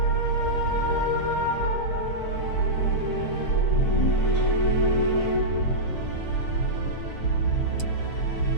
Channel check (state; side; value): late; right; 6.6 ms